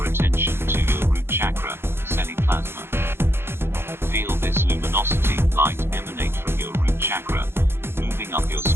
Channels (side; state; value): left; late; 0.11 ms